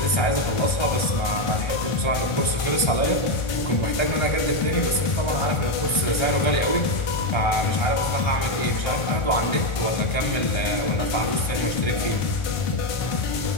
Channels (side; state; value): right; late; 1.3 ms